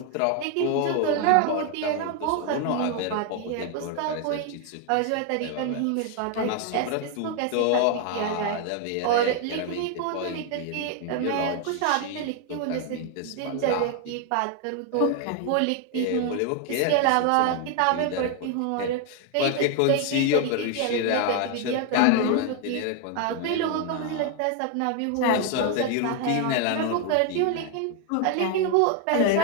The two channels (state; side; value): different; both; correlation 0.01